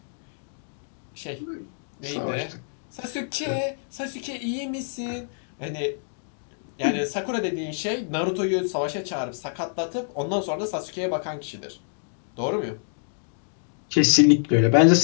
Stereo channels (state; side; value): silent; right; digital silence